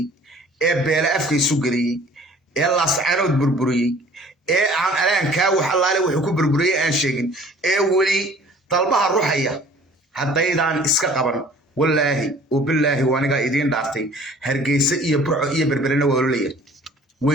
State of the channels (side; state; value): both; normal; correlation 0.51